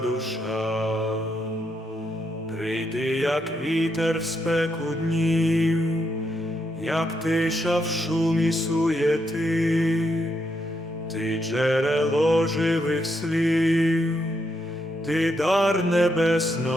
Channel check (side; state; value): both; normal; correlation 0.79